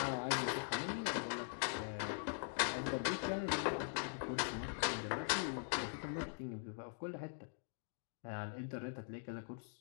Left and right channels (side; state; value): right; silent; digital silence